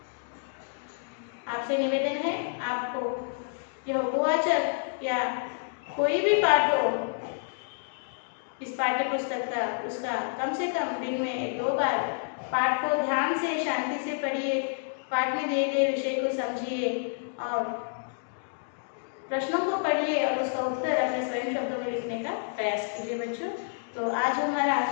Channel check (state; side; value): silent; right; digital silence